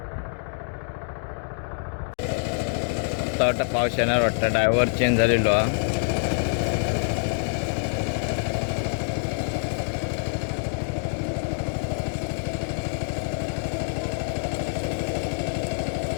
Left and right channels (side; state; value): right; silent; 61 dB below the other